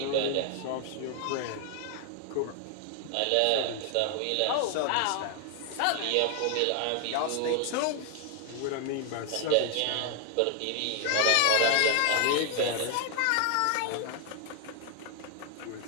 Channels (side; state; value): both; different; correlation 0.00